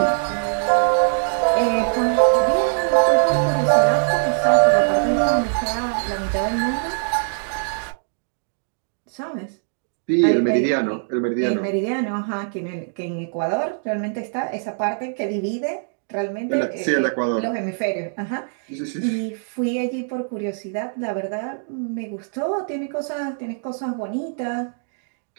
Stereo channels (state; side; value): silent; left; digital silence